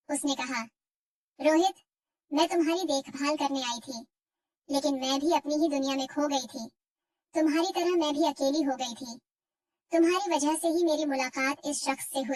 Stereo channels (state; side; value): identical; both; correlation 1.00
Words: उसने कहा, रोहित, मैं तुम्हारी देखभाल करने आई थी, लेकिन मैं भी अपनी ही दुनिया में खो गई थी। तुम्हारी तरह मैं भी अकेली हो गई थी। तुम्हारी वजह से ही मेरी मुलाकात इस शख्स से